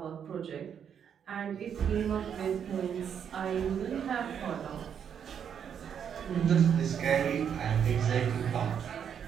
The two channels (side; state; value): left; quieter; 8.1 dB